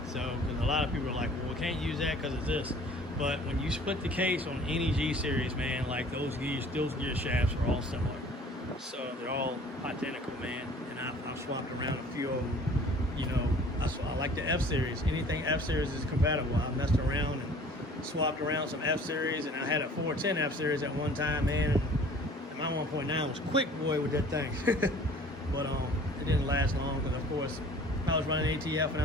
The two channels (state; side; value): normal; both; correlation 0.50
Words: So because a lot of people are like, well, we can't use that because of this. But when you split the case on any G series, man, like those gear shafts are all similar. So they're all identical, man. And I've swapped around a few of them. I like the F series. Anything F series is compatible. I messed around and swapped around some F series, and I had a 410 F series at one time, man. And my 1.9 was quick, boy, with that thing. But it didn't last long because, of course, I was running ATF and I